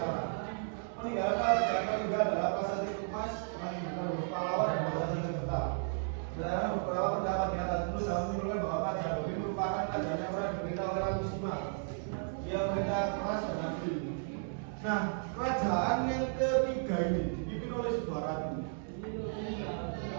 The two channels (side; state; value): left; silent; digital silence